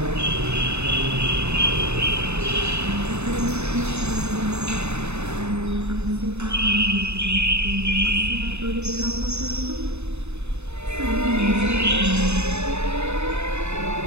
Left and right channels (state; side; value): late; left; 0.81 ms